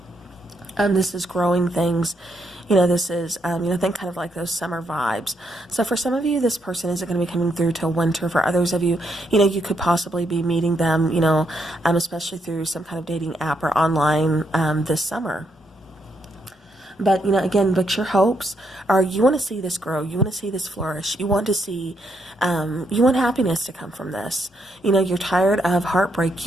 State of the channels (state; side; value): normal; both; correlation 0.77